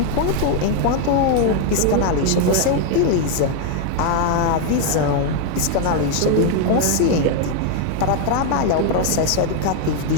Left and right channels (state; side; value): different; both; correlation 0.01